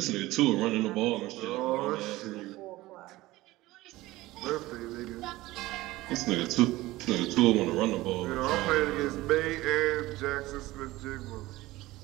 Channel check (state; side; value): quieter; left; 18.3 dB